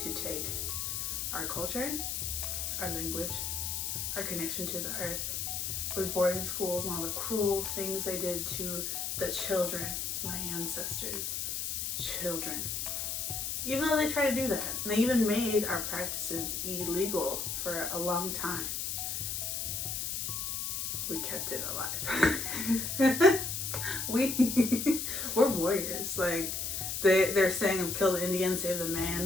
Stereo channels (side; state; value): left; noise; hiss, 2 dB below the sound